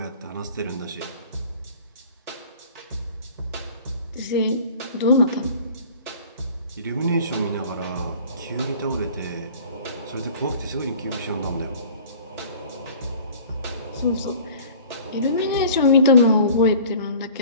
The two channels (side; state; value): both; inverted; correlation -0.47